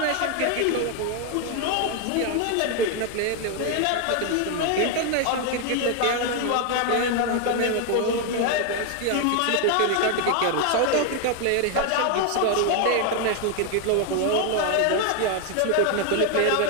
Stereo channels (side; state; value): both; different; correlation 0.01